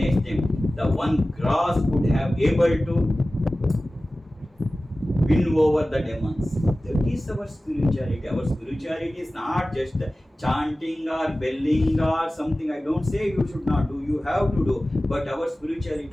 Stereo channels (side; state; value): both; normal; correlation 0.96